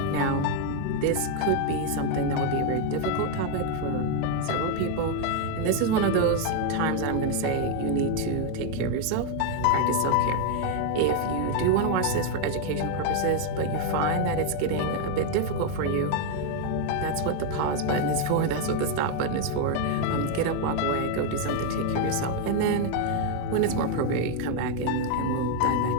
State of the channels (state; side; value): different; both; correlation 0.01